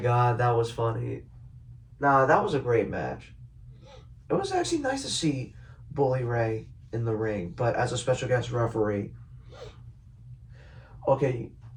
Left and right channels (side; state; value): both; identical; correlation 1.00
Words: that was funny. Nah, that was a great match. It was actually nice to see Bully Ray in the ring, but as a special guest referee. Okay,